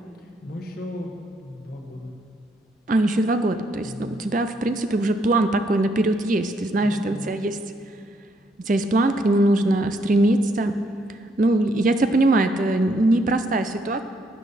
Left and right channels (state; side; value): normal; both; correlation 0.72